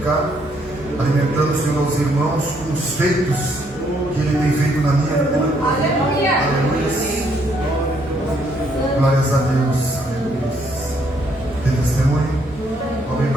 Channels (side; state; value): right; noise; hum, 21 dB below the sound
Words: alimentando, Senhor, aos irmãos com os feitos que Ele tem feito na minha vida. Aleluia! Glórias a Deus. Tem testemunho? Vamos